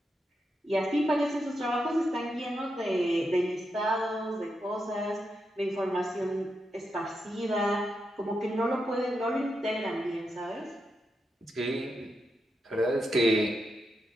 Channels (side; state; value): both; normal; correlation 0.85